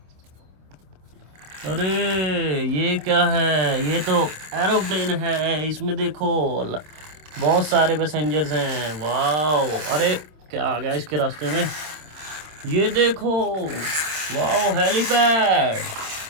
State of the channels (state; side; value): late; left; 26 ms